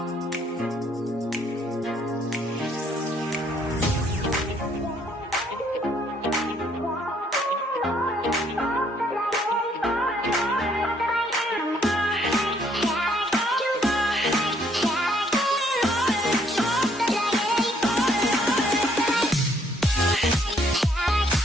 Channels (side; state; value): both; normal; correlation 0.66